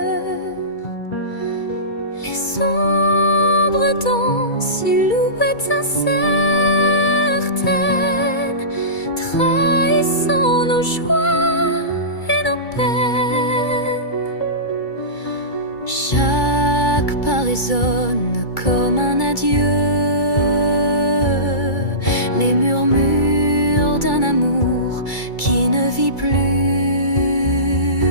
Les ombres dansent, silhouettes incertaines, trahissant nos joies et nos peines. Chaque pas résonne comme un adieu, les murmures d'un amour qui ne vit plus.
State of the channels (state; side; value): late; right; 2.3 ms